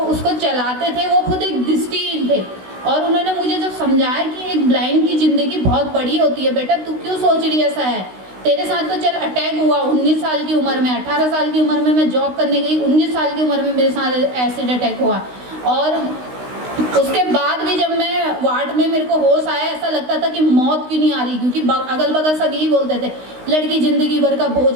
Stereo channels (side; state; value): left; late; 16 ms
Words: चलाते थे वो खुद एक दृष्टिहीन थे, और उन्होंने मुझे जब समझाया कि एक ब्लाइंड की ज़िंदगी बहुत बड़ी होती है बेटा, तू क्यों सोच रही ऐसा है, तेरे साथ तो चल अटैक हुआ 19 साल की उम्र में, 18 साल की उम्र में मैं जॉब करने गई, 19 साल की उम्र में मेरे साथ एसिड अटैक हुआ। और उसके बाद भी जब मैं वार्ड में मेरे को होश आया, ऐसा लगता था कि मौत क्यों नहीं आ रही, क्योंकि अगल बगल सब यही बोलते थे लड़की ज़िंदगी भर का